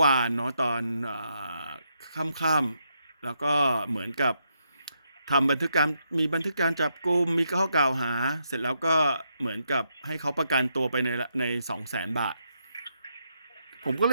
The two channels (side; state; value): both; inverted; correlation -0.79